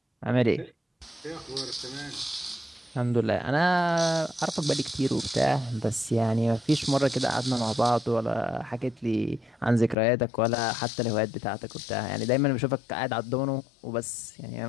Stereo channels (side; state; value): right; drops out; at 10.0 s